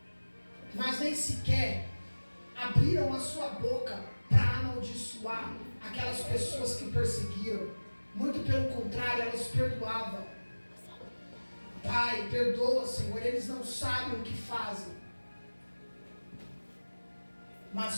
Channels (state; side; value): inverted; both; correlation -1.00